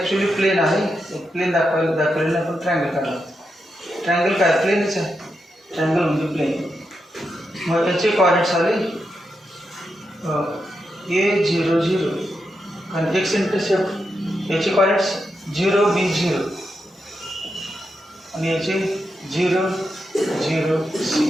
प्लेन आहे. प्लेन दाखवलेलं आपण ट्रायंगल काढला. ट्रायंगल काय प्लेनच आहे. ट्रायंगल म्हणजे प्लेन. मग याचे कॉर्डिनेट्स आले A00 आणि एक्स इंटरसेप्ट याचे कॉर्डिनेट्स 0 B0 आणि याचे 0 0 C.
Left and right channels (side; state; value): both; normal; correlation 0.86